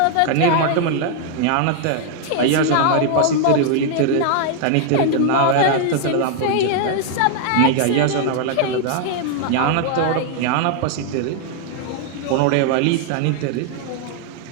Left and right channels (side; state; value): both; different; correlation 0.00